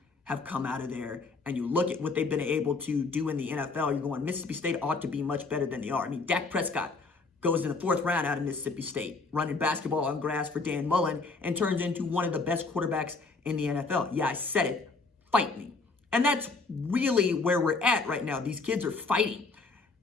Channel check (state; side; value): quieter; right; 3.9 dB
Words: have come out of there and you look at what they've been able to do in the NFL, you're going, Mississippi State ought to be much better than they are. I mean, Dak Prescott goes in the 4th round out of Mississippi State, running basketball on grass for Dan Mullen, and turns into one of the best quarterbacks in the NFL. Yeah, I said it. Fight me. And that's really where we're at right now. These kids are fighting.